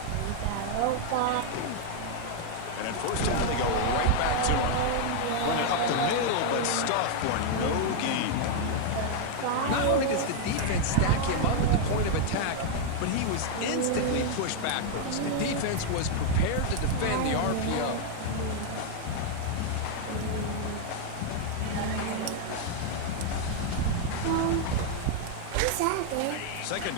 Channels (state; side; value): different; both; correlation 0.00